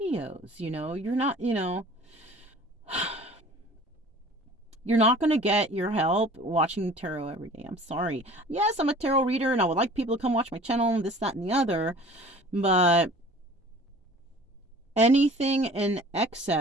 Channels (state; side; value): normal; both; correlation 0.46